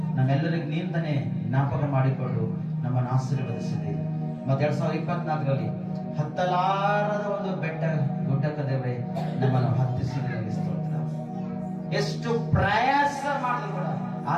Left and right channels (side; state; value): both; identical; correlation 1.00